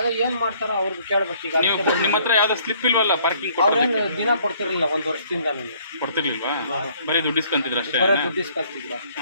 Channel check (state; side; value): inverted; both; correlation -0.61